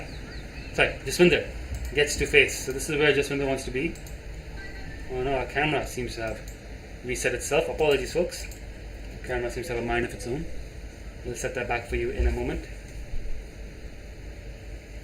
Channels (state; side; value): identical; both; correlation 1.00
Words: gets to face. So this is where Jaswinder wants to be. Oh no, our camera seems to have reset itself. Apologies, folks. The camera seems to have a mind of its own. We'll set that back for you in a moment.